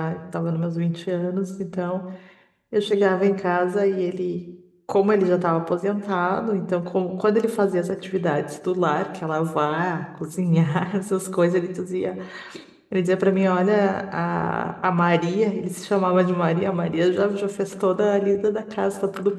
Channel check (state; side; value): identical; both; correlation 1.00